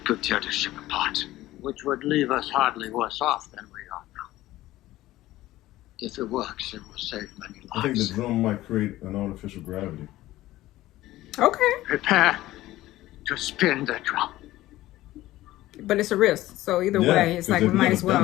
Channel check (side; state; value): right; quieter; 16.1 dB